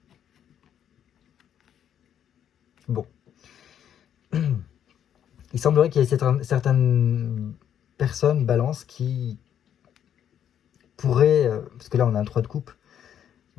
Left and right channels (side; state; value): right; quieter; 9.5 dB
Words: Bon. Il semblerait qu'il y ait certaines personnes, balance, qui pourraient, parce que là on a un 3 de coupe,